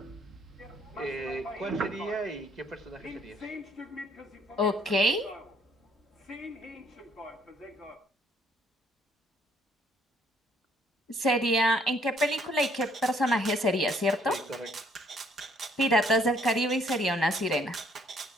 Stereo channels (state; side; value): normal; both; correlation 0.65